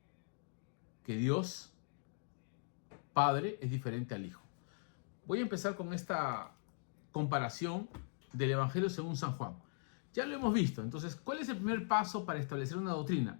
que Dios Padre es diferente al Hijo. Voy a empezar con esta comparación del Evangelio según San Juan. Ya lo hemos visto, entonces, ¿cuál es el primer paso para establecer una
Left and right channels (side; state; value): right; silent; digital silence